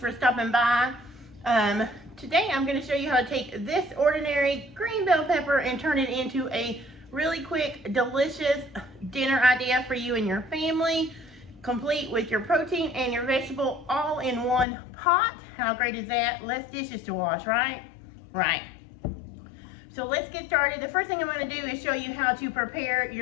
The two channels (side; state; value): right; drops out; at 14.7 s